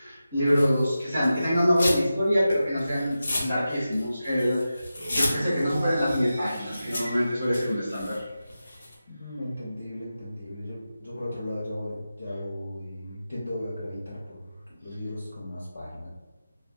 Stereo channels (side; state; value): both; inverted; correlation -0.92